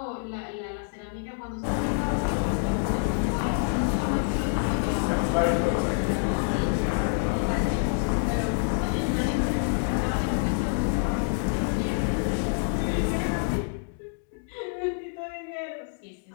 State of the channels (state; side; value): silent; right; digital silence